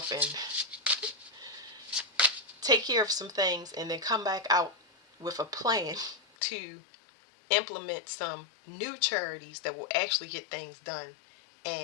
and take care of some things, and then come back out with a plan to implement some new charities that will actually get things done,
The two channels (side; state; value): right; drops out; at 6.2 s